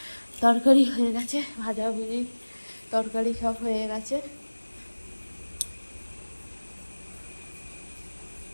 তরকারি হয়ে গেছে, ভাজাভুজি তরকারি সব হয়ে গেছে।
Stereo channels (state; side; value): inverted; both; correlation -1.00